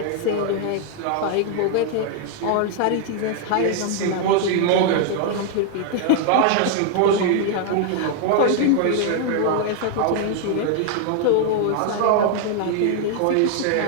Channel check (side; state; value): both; different; correlation 0.00